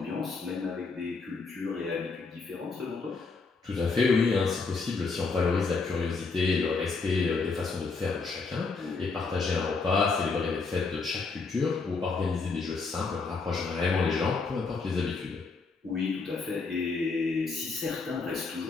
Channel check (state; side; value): quieter; right; 4.4 dB